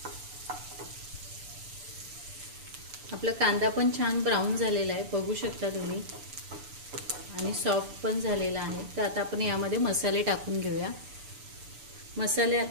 आपला कांदा पण छान ब्राऊन झालेला आहे, बघू शकता तुम्ही, आणि सॉफ्ट पण झालेला आहे. तर आता आपण यामध्ये मसाले टाकून घेऊया. मसाले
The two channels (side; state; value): left; late; 6.9 ms